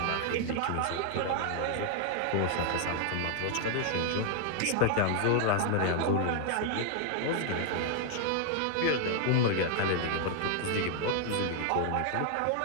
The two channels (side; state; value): both; different; correlation 0.00